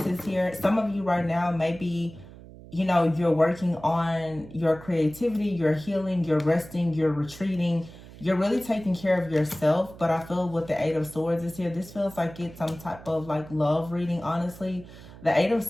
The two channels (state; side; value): noise; right; hum, 18 dB below the sound